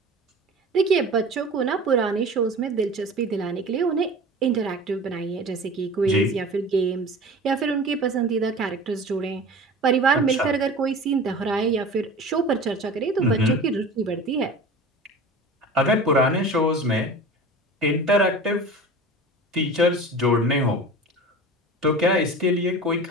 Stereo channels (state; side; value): normal; both; correlation 0.37